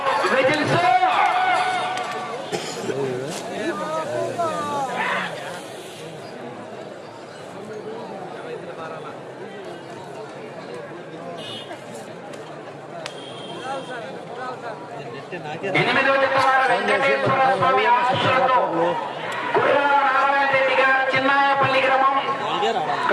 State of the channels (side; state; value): both; identical; correlation 1.00